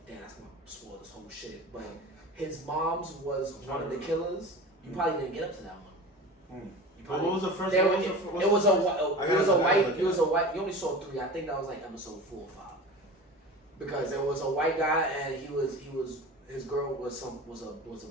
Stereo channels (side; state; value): both; normal; correlation 0.34